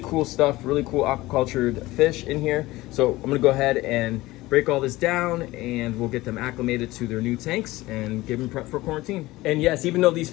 cool stuff, really cool aquacultured fish in here. So I'm gonna go ahead and break all this down and we'll get them acclimated to their new tanks and give them prep for quarantine. And yes, even though these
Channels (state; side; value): quieter; right; 18.7 dB